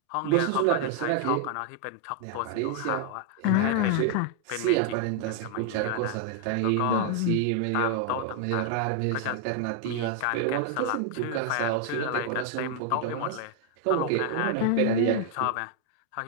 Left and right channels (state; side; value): different; both; correlation 0.00